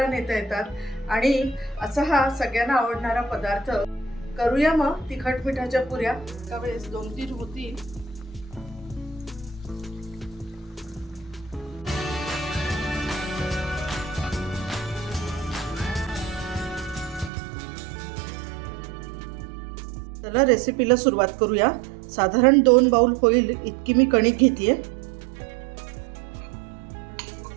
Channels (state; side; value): drops out; left; at 17.3 s